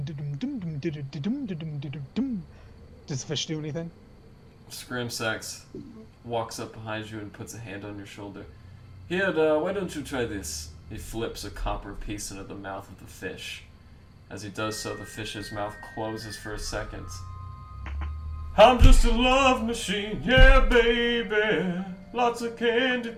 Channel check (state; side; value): identical; both; correlation 1.00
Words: Does the fish do anything? Scramsax walks up behind you and puts a hand on your shoulder. Here, why don't you try this? He flips a copper piece into the mouth of the fish. As he does so, the fish's mouth closes for a second. I'm just a love machine, yeah, baby. Lots of candy